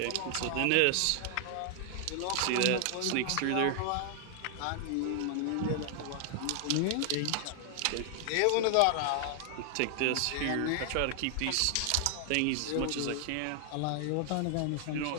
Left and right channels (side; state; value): both; different; correlation 0.00